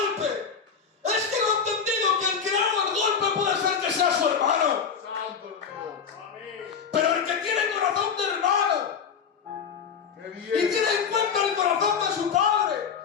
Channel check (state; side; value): quieter; right; 6.5 dB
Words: es que no ha entendido que el que haga el golpe puede ser que sea su hermano. Santo Dios. Amén. Pero el que tiene corazón de hermano Qué y bien. tiene en cuenta el corazón de su padre